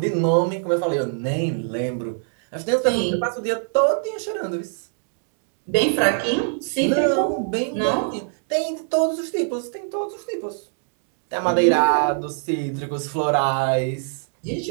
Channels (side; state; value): left; silent; digital silence